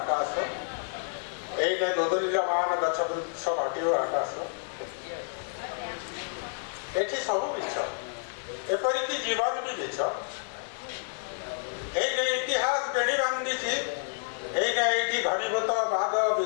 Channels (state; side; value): silent; right; digital silence